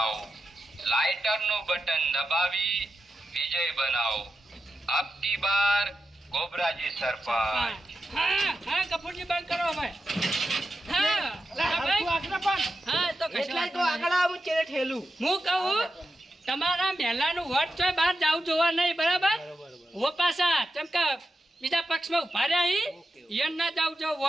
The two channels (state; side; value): normal; both; correlation 0.89